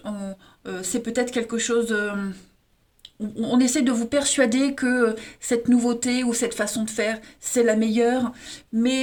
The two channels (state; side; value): identical; both; correlation 1.00